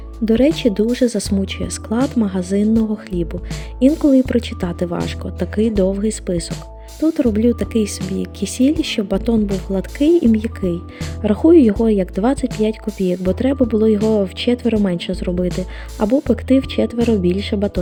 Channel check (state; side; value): identical; both; correlation 1.00